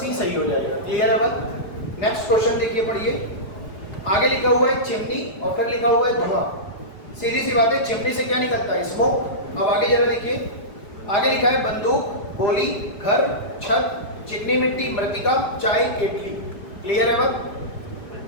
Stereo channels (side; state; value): right; late; 4.8 ms